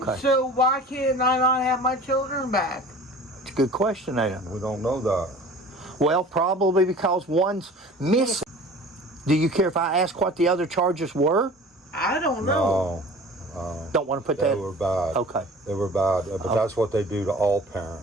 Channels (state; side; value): normal; both; correlation 0.43